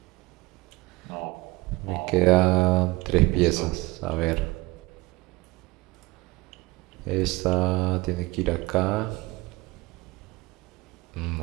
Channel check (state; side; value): quieter; left; 22.2 dB